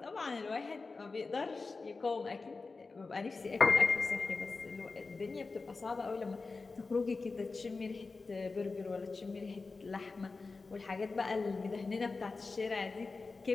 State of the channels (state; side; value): quieter; right; 4.0 dB